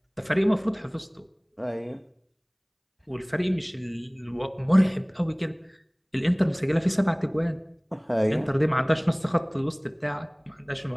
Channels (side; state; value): both; identical; correlation 1.00